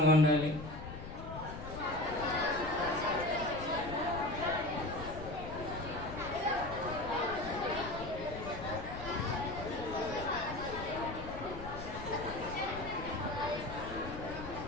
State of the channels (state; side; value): noise; left; rumble, 10 dB below the sound